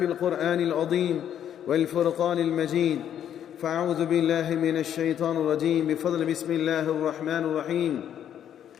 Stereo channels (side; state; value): right; quieter; 9.8 dB